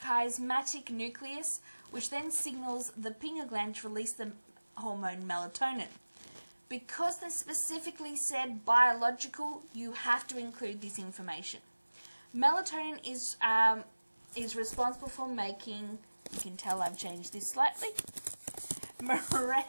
nucleus, which then signals the pineal gland to release the hormone melatonin. Because they specifically said biological, you have to include this information. Melatonin is responsible for making, you can tell I've changed this slightly,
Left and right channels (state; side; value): inverted; both; correlation -1.00